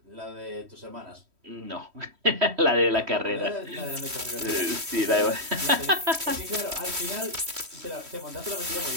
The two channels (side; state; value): left; late; 3.1 ms